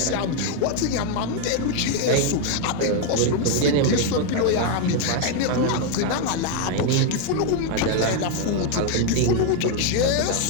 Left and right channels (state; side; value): different; both; correlation 0.01